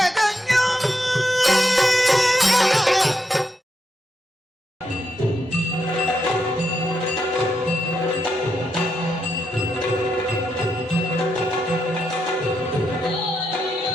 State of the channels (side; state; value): both; normal; correlation 0.82